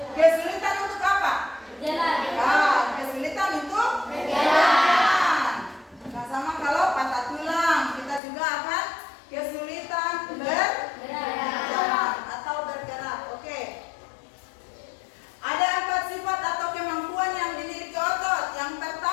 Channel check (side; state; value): right; drops out; at 8.2 s